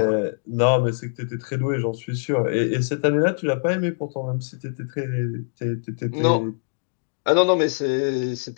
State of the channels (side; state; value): right; silent; digital silence